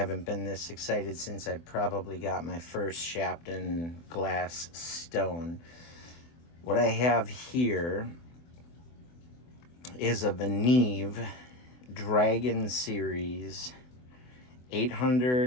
been this excited since I probably got my first Sharpening glass stone. What I have here is a VENEV Dragon Series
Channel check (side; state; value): right; late; 24 ms